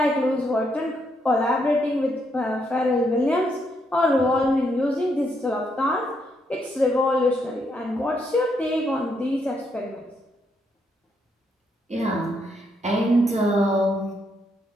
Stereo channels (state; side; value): normal; both; correlation 0.77